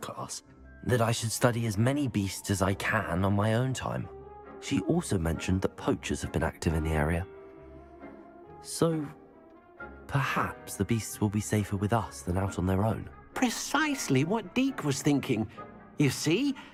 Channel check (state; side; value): identical; both; correlation 1.00